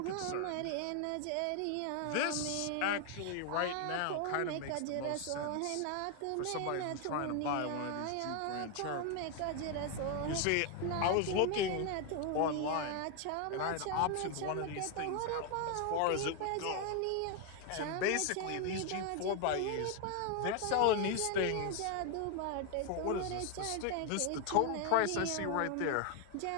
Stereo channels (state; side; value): different; both; correlation 0.01